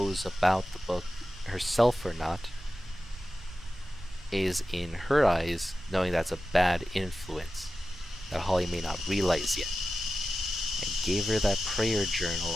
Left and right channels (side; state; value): both; normal; correlation 0.93